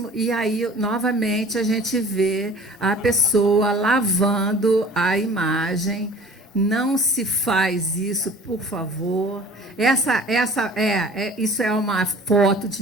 e aí, novamente, a gente vê a pessoa lavando a imagem. Não se faz isso, por favor. Isso é uma foto de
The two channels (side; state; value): both; normal; correlation 0.46